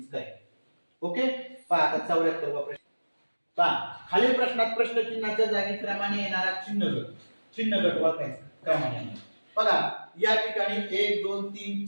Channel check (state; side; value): inverted; both; correlation -1.00